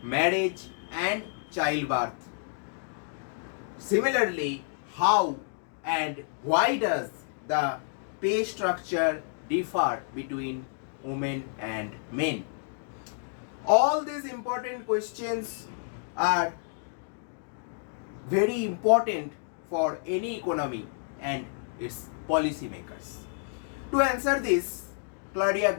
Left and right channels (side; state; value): right; silent; digital silence